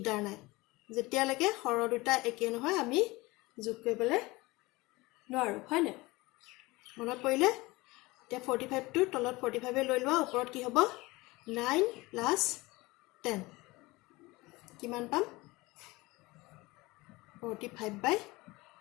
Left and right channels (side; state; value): right; quieter; 21.9 dB